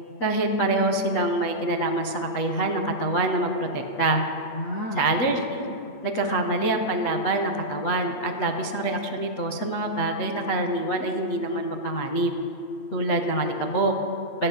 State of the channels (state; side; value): late; right; 8.7 ms